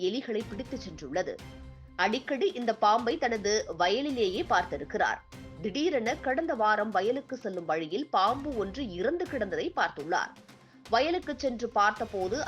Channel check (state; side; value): identical; both; correlation 1.00